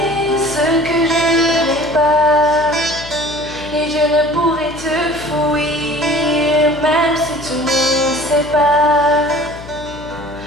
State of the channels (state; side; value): noise; left; hum, 16 dB below the sound